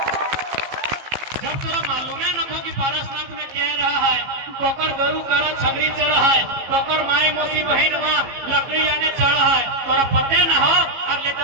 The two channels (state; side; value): late; left; 15 ms